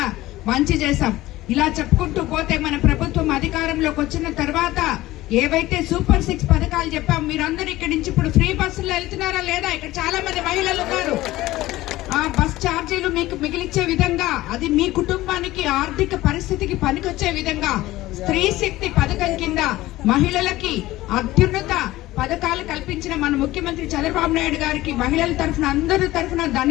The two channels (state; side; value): quieter; right; 17.1 dB